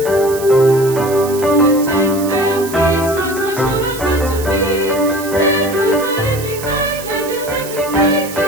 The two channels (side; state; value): right; noise; hiss, 12 dB below the sound